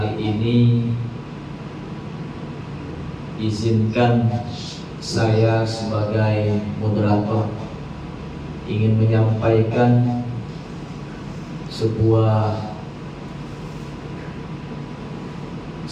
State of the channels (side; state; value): both; identical; correlation 1.00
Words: ini izinkan saya sebagai moderator ingin menyampaikan sebuah